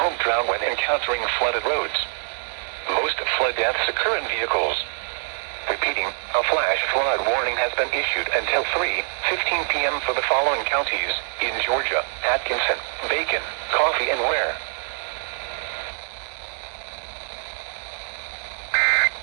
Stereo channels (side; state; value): left; silent; 62 dB below the other